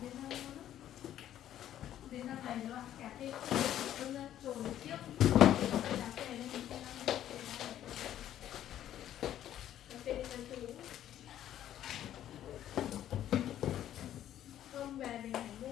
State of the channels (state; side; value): quieter; right; 11.6 dB